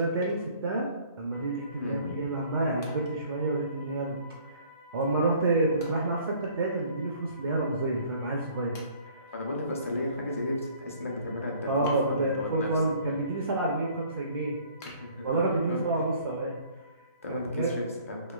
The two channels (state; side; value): inverted; both; correlation -0.56